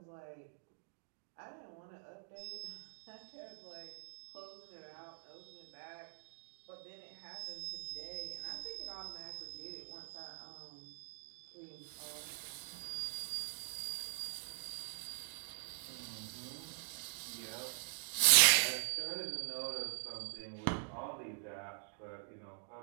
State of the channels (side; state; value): left; silent; digital silence